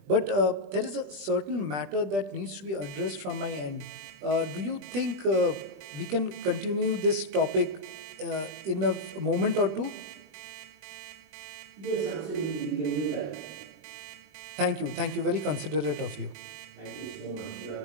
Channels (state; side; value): late; left; 20 ms